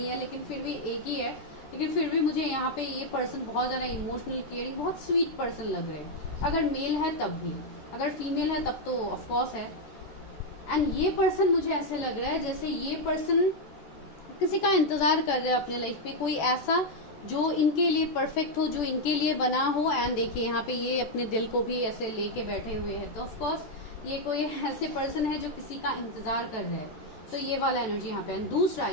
है, लेकिन फिर भी एक ही है, लेकिन फिर भी मुझे यहाँ पे ये पर्सन बहुत ज़्यादा इमोशनल, केयरिंग, बहुत स्वीट पर्सन लग रहे हैं। अगर मेल है तब भी, अगर फीमेल है तब तो ऑफकोर्स है। एंड ये पर्सन मुझे ऐसे लग रहा है जैसे ये पर्सन किसी का इंतजार कर रहे हैं अपने लाइफ में, कोई ऐसा जो इनके लिए परफेक्ट हो, जो इनके लिए बना हो। एंड देखिए यहाँ पे ये अपने दिल को भी ऐसे लेके बैठे हुए हैं, तो ऑफकोर्स ये कोई ऐसे पर्सन है जो किसी का इंतजार कर रहे हैं, तो ये वाला एनर्जी यहाँ पे। दूसरा,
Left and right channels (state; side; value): late; right; 14 ms